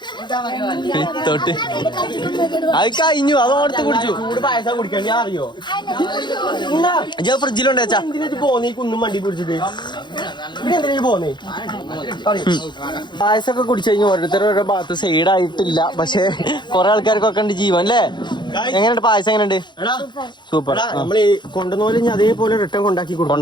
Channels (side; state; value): right; late; 0.22 ms